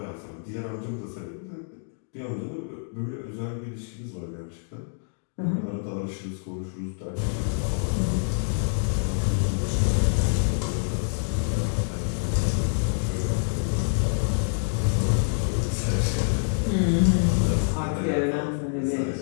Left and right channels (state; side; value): silent; right; digital silence